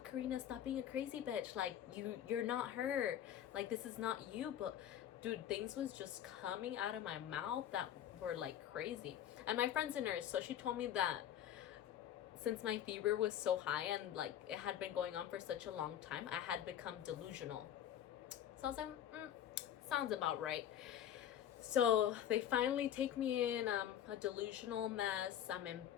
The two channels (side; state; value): right; quieter; 10.5 dB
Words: Karina, stop being a crazy bitch. Like, you're not her. Like, this is not you. But dude, things was just coming out of my mouth that were like crazy. And my friend's a nurse, so she told me that since my fever was so high and like it had been going on for such a long time, I had become delusional. So I was like, sounds about right. So they finally take me in. I'm a delusional mess.